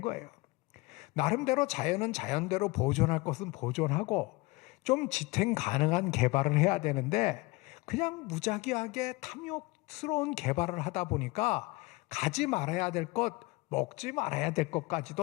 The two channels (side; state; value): right; quieter; 23.5 dB